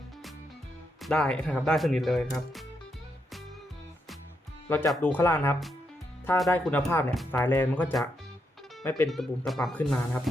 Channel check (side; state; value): both; normal; correlation 0.80